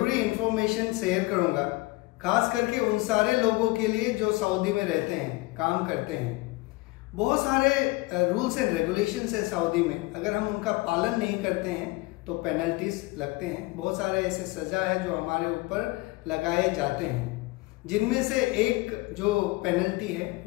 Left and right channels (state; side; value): quieter; right; 22.2 dB